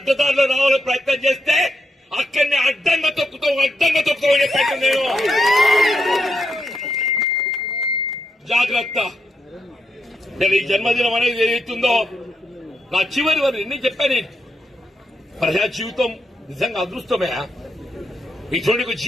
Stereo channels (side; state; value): both; normal; correlation 0.82